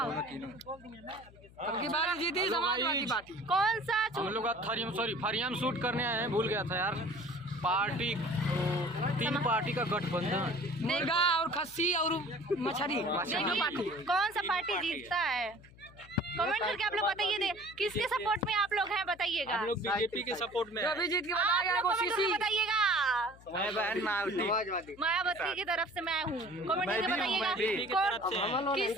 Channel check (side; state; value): left; noise; hum, 23 dB below the sound